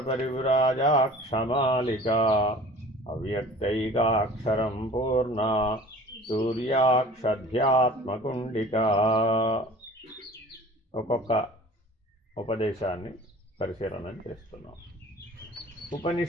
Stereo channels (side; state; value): both; normal; correlation 0.44